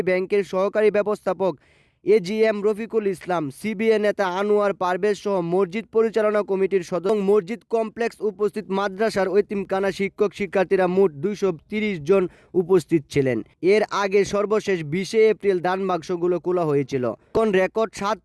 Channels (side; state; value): both; identical; correlation 1.00